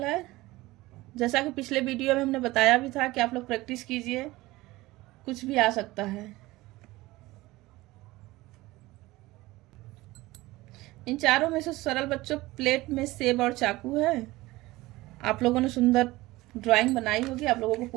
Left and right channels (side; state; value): left; quieter; 19.3 dB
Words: है, जैसा कि पिछले वीडियो में हमने बताया भी था कि आप लोग प्रैक्टिस कीजिए, कुछ भी आ सकता है। इन चारों में से सरल बच्चों प्लेट में सेब और चाकू है। आप लोगों ने सुंदर ड्राइंग बनाई होगी, आप लोगों को